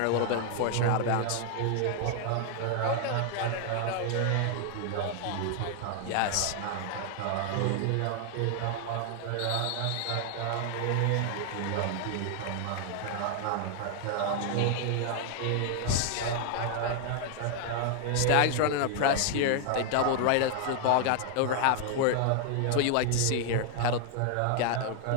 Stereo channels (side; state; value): both; different; correlation 0.00